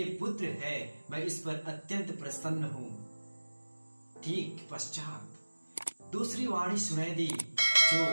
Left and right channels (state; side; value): inverted; both; correlation -1.00